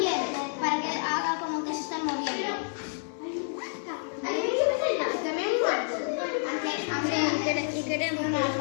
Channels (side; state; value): right; silent; 59 dB below the other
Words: para que haga como que se está moviendo. También un árbol. Y queremos con los